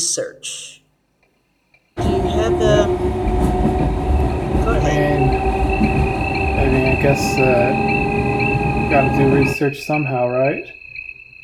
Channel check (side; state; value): both; identical; correlation 1.00